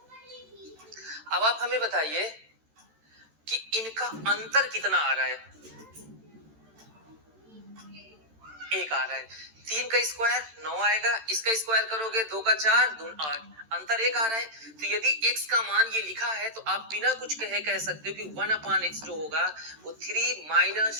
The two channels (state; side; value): late; left; 13 ms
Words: अब आप हमें बताइए कि इनका अंतर कितना आ रहा है। 1 आ रहा है। 3 का स्क्वायर 9 आएगा, इसका स्क्वायर करोगे 2 का 4 2 8, अंतर 1 आ रहा है। तो यदि x का मान ये लिखा है तो आप बिना कुछ कहे कह सकते हो कि 1/x जो होगा वो 3 माइनस